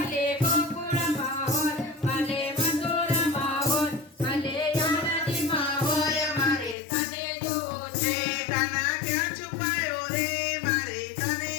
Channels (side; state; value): right; drops out; at 6.8 s